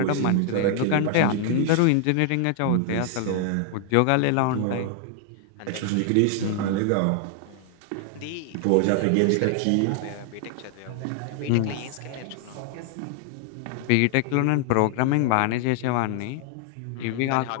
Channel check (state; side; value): different; both; correlation 0.00